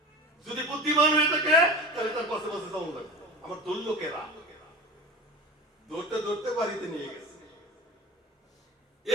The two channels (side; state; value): both; normal; correlation 0.31